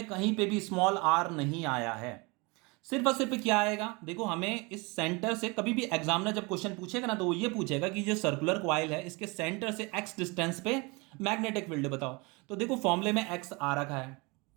कहीं पे भी स्मॉल आर नहीं आया है। सिर्फ और सिर्फ क्या आएगा, देखो हमें इस सेंटर से, कभी भी एग्जामिनर जब क्वेश्चन पूछेगा ना, तो वो ये पूछेगा कि जो सर्कुलर कॉइल है इसके सेंटर से एक्स डिस्टेंस पे मैग्नेटिक फील्ड बताओ। तो देखो फॉर्मूले में एक्स आ रखा है,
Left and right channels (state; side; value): quieter; left; 27.3 dB